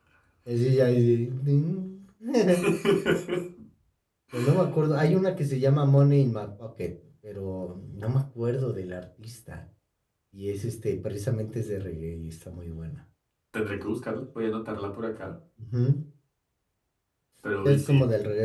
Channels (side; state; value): both; identical; correlation 1.00